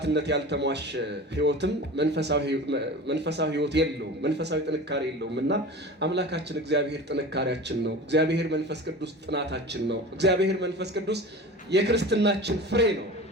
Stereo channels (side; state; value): both; normal; correlation 0.34